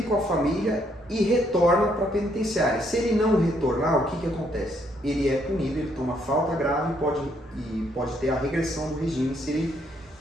com a família e retorna para a penitenciária. Se ele não retornar, o que acontece? Ele é punido, ele toma falta grave e pode ter a regressão do regime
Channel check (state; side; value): normal; both; correlation 0.71